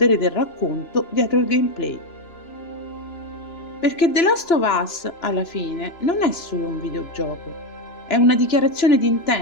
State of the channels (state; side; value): late; right; 2.9 ms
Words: del racconto dietro il gameplay. Perché The Last of Us, alla fine, non è solo un videogioco, è una dichiarazione di